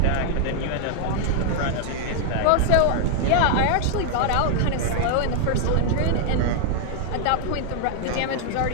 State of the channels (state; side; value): different; both; correlation -0.01